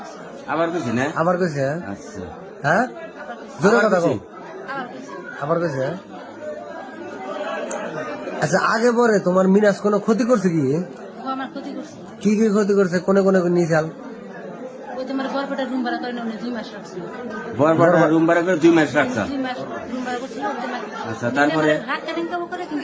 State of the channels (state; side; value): identical; both; correlation 1.00